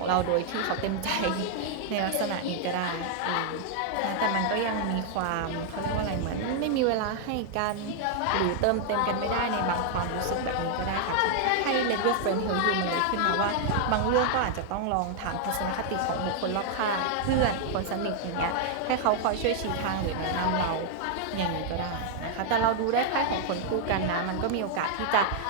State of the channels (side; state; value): both; different; correlation 0.00